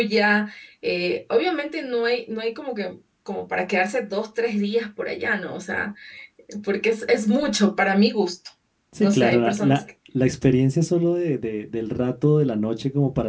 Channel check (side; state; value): both; identical; correlation 1.00